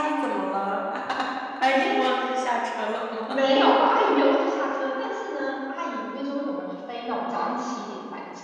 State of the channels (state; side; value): identical; both; correlation 1.00